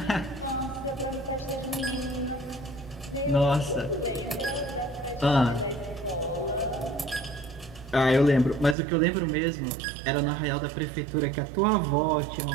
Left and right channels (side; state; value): left; drops out; at 8.8 s